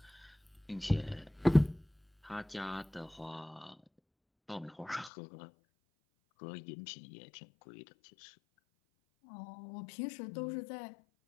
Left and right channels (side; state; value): right; drops out; at 5.1 s